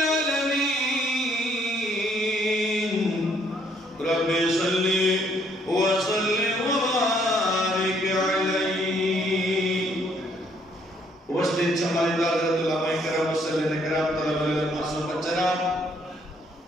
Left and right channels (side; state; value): both; normal; correlation 0.67